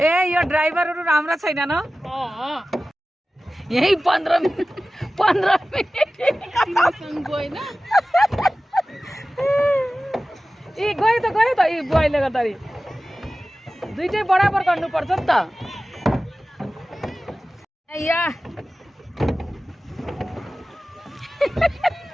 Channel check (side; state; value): both; normal; correlation 0.96